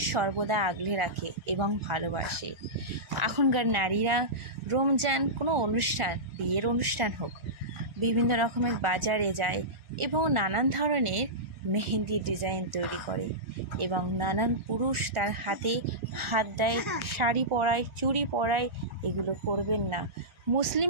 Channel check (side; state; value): left; late; 1.4 ms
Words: সর্বদা আগলে রাখে এবং ভালোবাসে। এখনকার নারীরা রমজান কোনো অনুষ্ঠান, বিয়ের অনুষ্ঠান হোক, বিভিন্ন রকমের বাজারে যায় এবং নানান ধরনের মেহেন্দির ডিজাইন তৈরি করে এবং নানান পুরুষ তার হাতে হাত দেয়, শাড়ি পরায়, চুড়ি পরায়। এগুলো করবেন না।